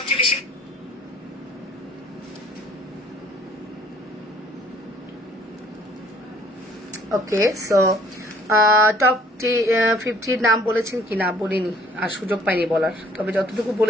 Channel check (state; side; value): normal; both; correlation 0.58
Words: বেশি ওকে। সো টপ 50 নাম বলেছেন কি না বলিনি, আর সুযোগ পাইনি বলার, তবে যতটুকু